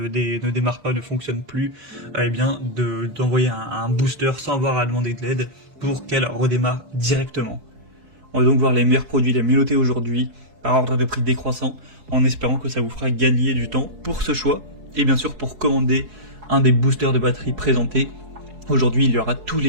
démarre pas, ne fonctionne plus, eh bien d'envoyer un booster sans avoir à demander de l'aide pour qu'elle redémarre directement. On va donc voir les meilleurs produits les mieux notés aujourd'hui, par ordre de prix décroissant, en espérant que ça vous fera gagner du temps pour ce choix, et bien sûr pour commander un des boosters de batterie présentés. Aujourd'hui, il y aura tous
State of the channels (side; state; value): left; late; 4.7 ms